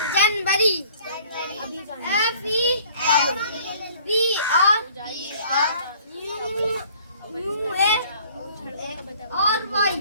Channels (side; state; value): both; inverted; correlation -0.54